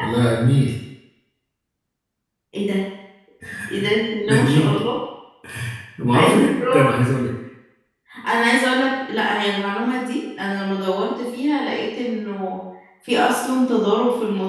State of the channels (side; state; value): both; identical; correlation 1.00